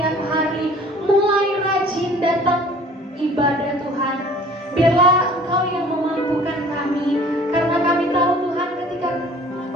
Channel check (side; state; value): both; normal; correlation 0.50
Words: hari, mulai rajin datang ibadah Tuhan. Biarlah Engkau yang memampukan kami, karena kami tahu Tuhan ketika